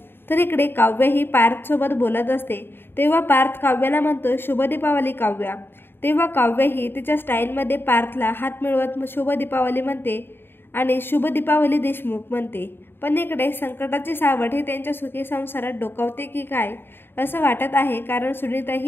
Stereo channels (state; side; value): late; right; 0.10 ms